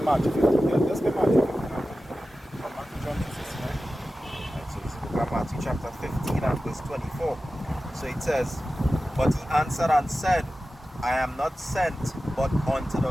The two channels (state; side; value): normal; both; correlation 0.94